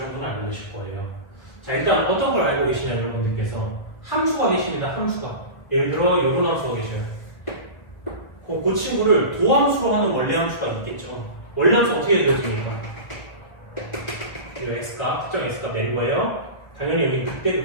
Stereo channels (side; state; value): right; late; 1.5 ms